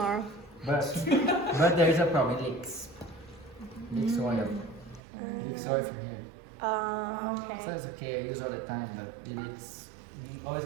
But there is a problem. It leaks. Leaks oil. Leaks oil from here. So Okay. it's okay. I use all the time, but it leaks. It always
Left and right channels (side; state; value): left; drops out; at 5.0 s